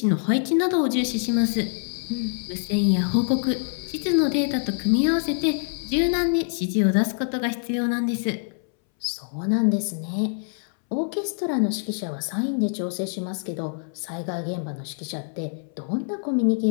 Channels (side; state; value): right; silent; 61 dB below the other